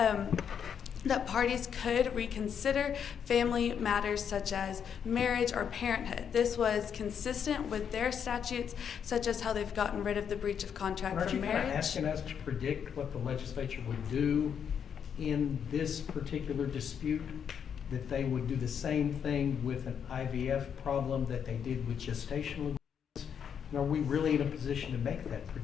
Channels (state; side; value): quieter; right; 7.8 dB